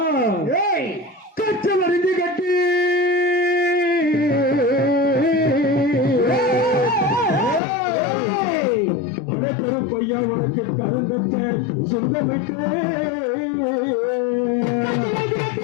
கச்சல் அறிஞ்சு கட்டி கருப்பையா உனக்கு கருந்தச்ச சொந்தமிட்டு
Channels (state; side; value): drops out; right; at 7.6 s